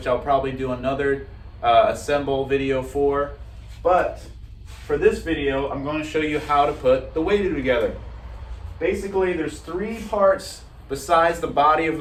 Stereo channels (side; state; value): both; identical; correlation 1.00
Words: I'll probably do another assemble video for. But for this video, I'm going to show you how to put the Waydoo together. Basically, there's three parts besides the body of